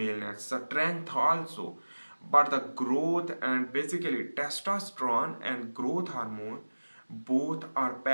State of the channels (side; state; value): both; inverted; correlation -1.00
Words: strength also. But the growth and basically testosterone and growth hormone both are